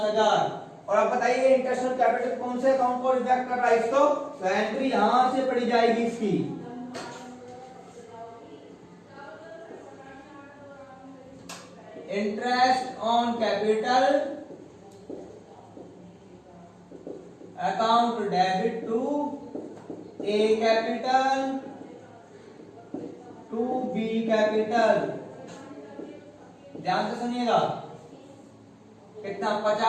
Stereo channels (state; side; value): identical; both; correlation 1.00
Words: और अब बताइए इंटरेस्ट ऑन कैपिटल कौन से अकाउंट को रिफ्लेक्ट कर रहा है इसको? तो एंट्री यहां से पड़ी जाएगी इसकी। Interest on capital account debit to A capital to B capital. ध्यान से सुनिएगा। कितना?